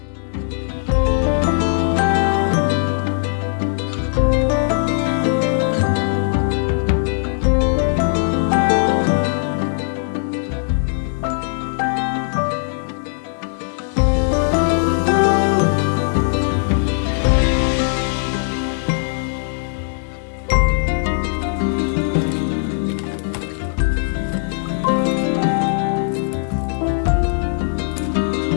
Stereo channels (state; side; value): silent; right; 66 dB below the other